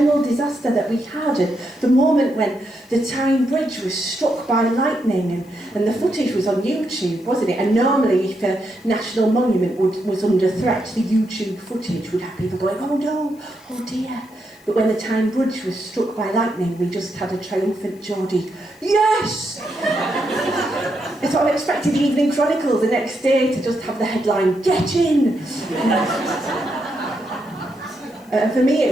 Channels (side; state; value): left; noise; hiss, 29 dB below the sound